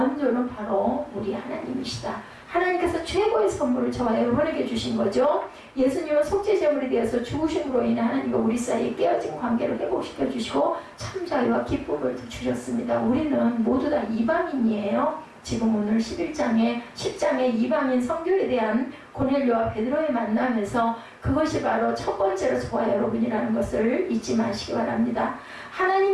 바로 우리 하나님이시다. 하나님께서 최고의 선물을 저와 여러분에게 주신 거죠. 예수님은 속죄제물이 되어서 죽으심으로 인해 하나님과 우리 사이에 깨어진 관계를 회복시켜 주시고 참 자유와 기쁨을 주셨습니다. 우리는 모두 다 이방인이에요. 지금 오늘 10장의 이방인 성교에 대한 고넬료와 베드로의 만남에서 그것이 바로 첫 번째로 저와 여러분이라는 것을 잊지 마시기 바랍니다.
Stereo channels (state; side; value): identical; both; correlation 1.00